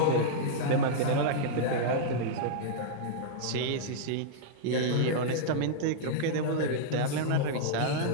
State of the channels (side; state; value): both; different; correlation -0.02